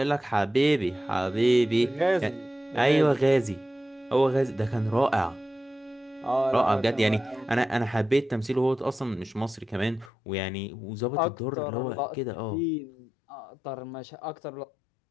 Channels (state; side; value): drops out; right; at 10.1 s